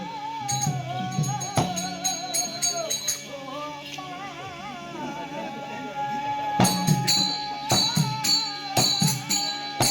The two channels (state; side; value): identical; both; correlation 1.00